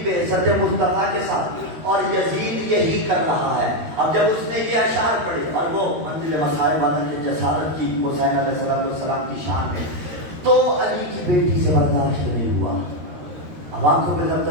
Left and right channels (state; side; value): late; left; 13 ms